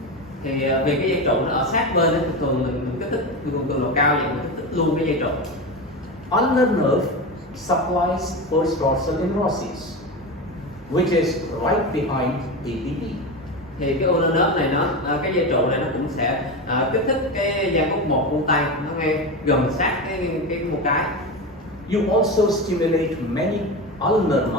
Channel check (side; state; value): both; normal; correlation 0.21